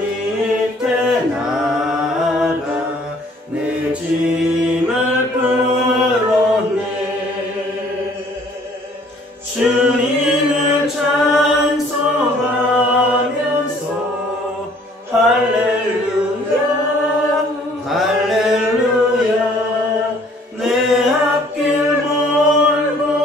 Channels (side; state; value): both; normal; correlation 0.58